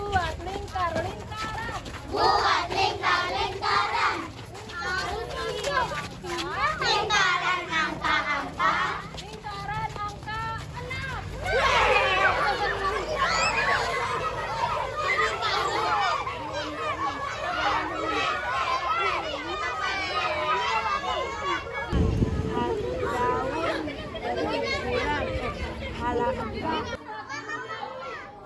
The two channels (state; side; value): identical; both; correlation 1.00